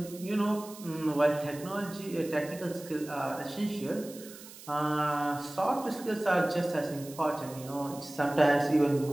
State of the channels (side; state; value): right; noise; hiss, 17 dB below the sound